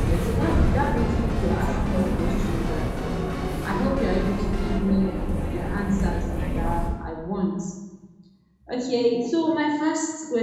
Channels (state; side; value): identical; both; correlation 1.00